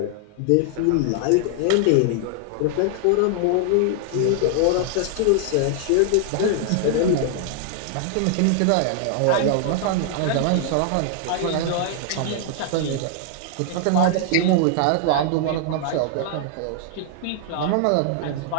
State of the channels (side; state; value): both; different; correlation 0.00